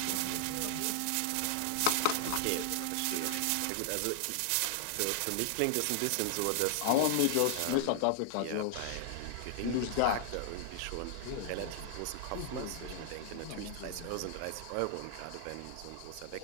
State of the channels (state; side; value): different; both; correlation 0.00